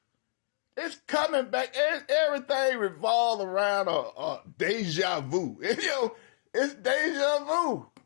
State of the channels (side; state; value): right; silent; digital silence